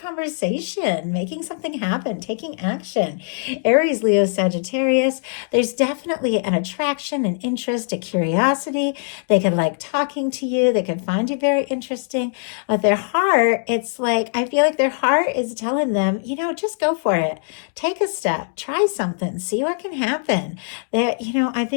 making something happen, taking action. Aries, Leo, Sagittarius. There's definitely an attraction, an interest, a curiosity. They could like talking to you. They could find you very interesting. But their heart, it's like, I feel like their heart is telling them, just go for it. Take a step, try something, see what can happen. I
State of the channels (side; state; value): right; silent; digital silence